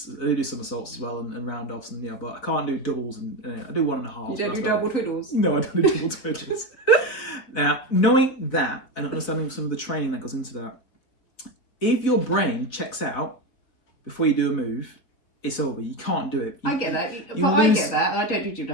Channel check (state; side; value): late; right; 4.2 ms